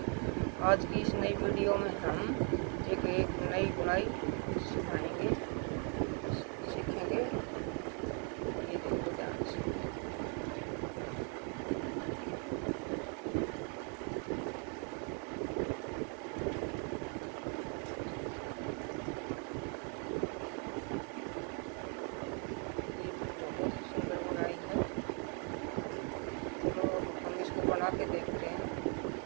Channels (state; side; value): quieter; left; 39.0 dB